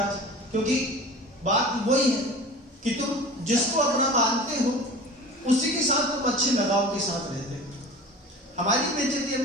क्योंकि बात वही है कि तुम जिसको अपना मानते हो उसी के साथ तुम अच्छे लगाव के साथ रहते हो। हमारी बेइज्जती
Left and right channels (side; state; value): both; normal; correlation 0.38